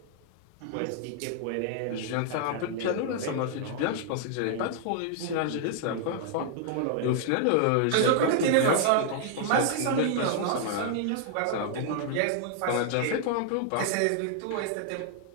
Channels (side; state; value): both; different; correlation -0.01